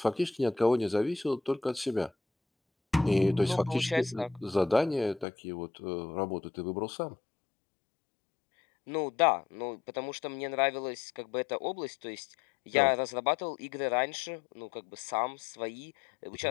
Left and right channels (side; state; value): right; drops out; at 5.2 s